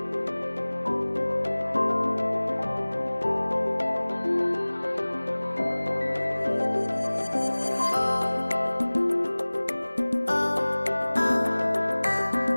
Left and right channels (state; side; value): inverted; both; correlation -1.00